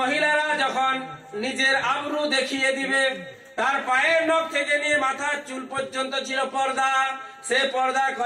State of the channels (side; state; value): both; identical; correlation 1.00